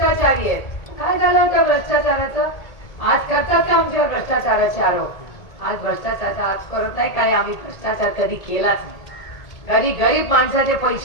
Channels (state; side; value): late; right; 1.8 ms